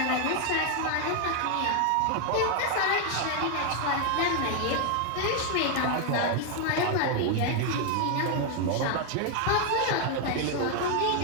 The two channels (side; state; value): both; different; correlation 0.00